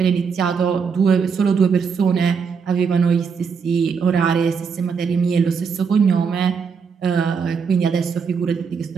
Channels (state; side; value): quieter; left; 5.9 dB